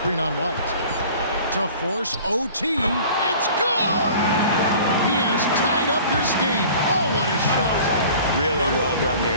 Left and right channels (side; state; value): both; inverted; correlation -0.46